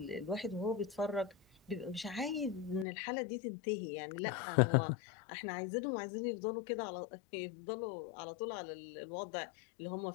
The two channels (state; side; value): drops out; right; at 2.9 s